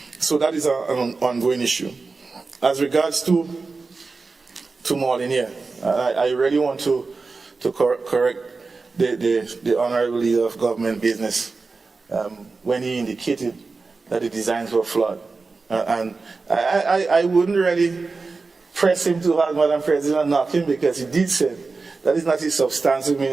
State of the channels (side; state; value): left; quieter; 4.1 dB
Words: So that is an ongoing issue. As regards to Molinier, I really want to correct the Honorable Leader of Government Business when he indicated that the designs were flawed. And I wouldn't really press him too hard, Madam President, and knock him, because he did say that is not his substantive